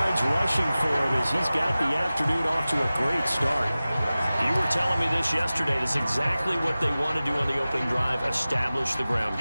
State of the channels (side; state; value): both; inverted; correlation -0.97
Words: rushing for him as he's got the afternoon off to a great start. You were telling me this yesterday. That's exactly what they want to do on the opening drive, establish the ground